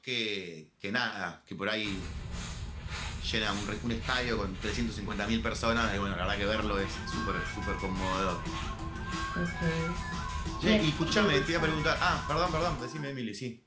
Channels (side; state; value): both; identical; correlation 1.00